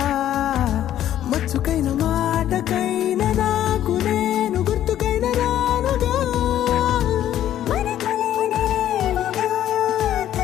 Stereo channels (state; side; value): quieter; right; 11.7 dB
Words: మచ్చుకైన మాటకైన నాకు నేను గుర్తుకైన రానుగా మనకులేనిదేమోగా